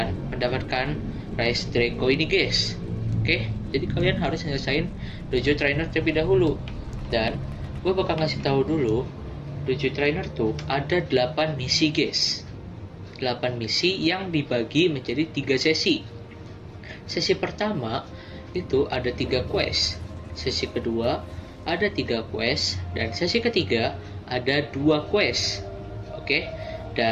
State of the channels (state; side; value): identical; both; correlation 1.00